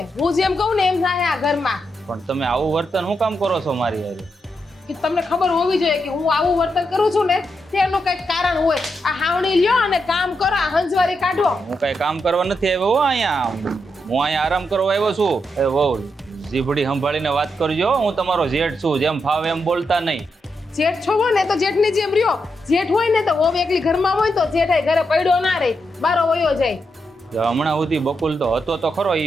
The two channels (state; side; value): normal; both; correlation 0.83